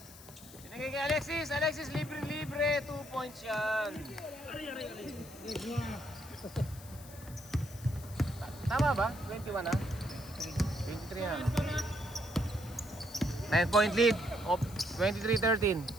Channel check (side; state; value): left; noise; hiss, 18 dB below the sound